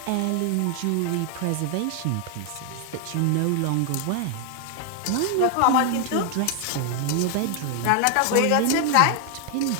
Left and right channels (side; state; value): both; different; correlation 0.00